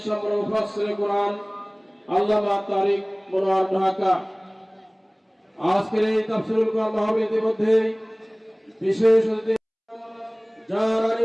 মুফাসসিরে কোরআন আল্লামা তারিক মনোয়ার ঢাকা। আজকের এই তাফসীরুল কোরআন মাহফিল ইতিমধ্যেই বিশেষ অতিথি, যার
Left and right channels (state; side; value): identical; both; correlation 1.00